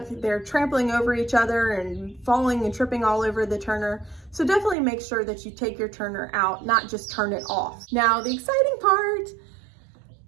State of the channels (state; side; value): drops out; left; at 4.8 s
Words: they're trampling over each other and falling and tripping all over the turner. So definitely make sure that you take your turner out, not just turn it off. Now, the exciting part,